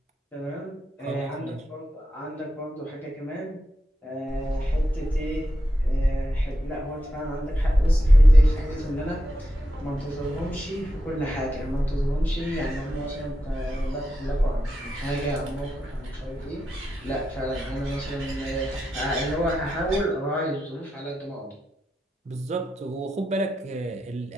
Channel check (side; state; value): both; normal; correlation 0.88